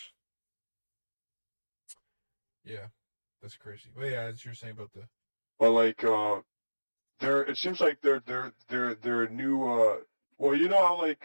Yeah, that's crazy. But yeah, as you're saying about the. But like, it seems like they're new. Well, you know how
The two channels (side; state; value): both; inverted; correlation -1.00